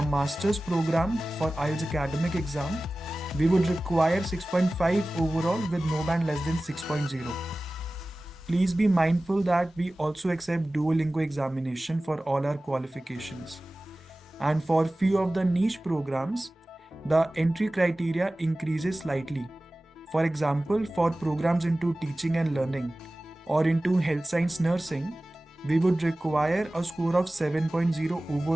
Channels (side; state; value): both; normal; correlation 0.97